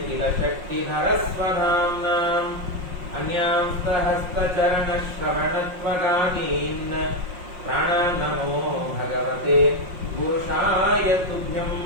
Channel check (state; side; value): late; left; 5.6 ms